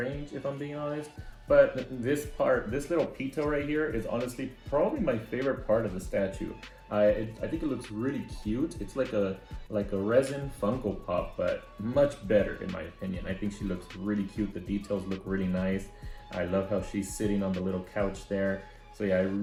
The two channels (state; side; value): identical; both; correlation 1.00